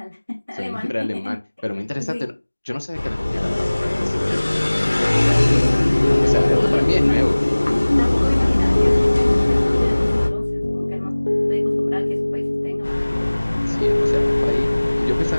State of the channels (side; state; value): both; inverted; correlation -1.00